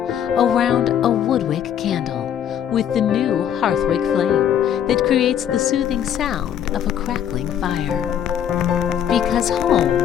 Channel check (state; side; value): quieter; right; 9.6 dB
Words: around a WoodWick candle with the new Hearthwick flame that creates the soothing sound of a crackling fire. Because